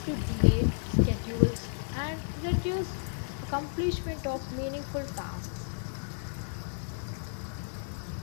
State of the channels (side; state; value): right; silent; digital silence